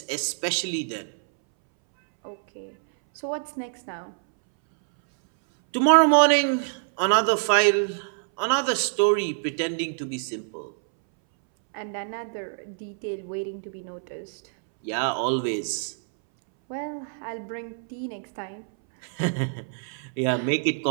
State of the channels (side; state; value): left; silent; 61 dB below the other